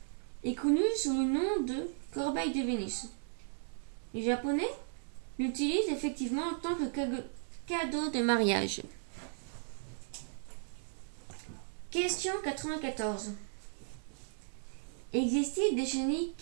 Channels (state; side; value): silent; left; digital silence